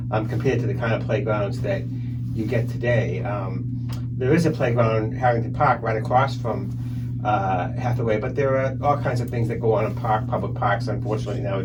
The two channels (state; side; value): identical; both; correlation 1.00